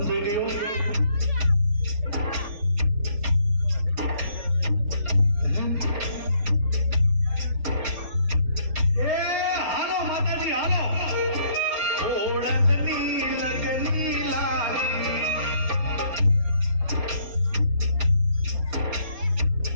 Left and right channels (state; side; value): late; left; 4.2 ms